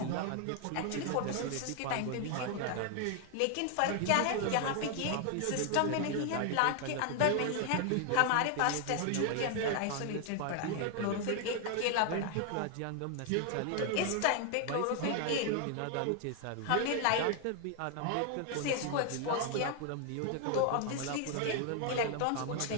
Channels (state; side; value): different; both; correlation 0.00